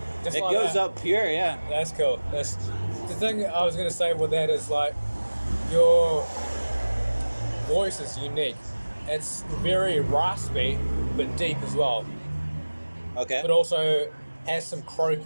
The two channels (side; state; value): both; inverted; correlation -1.00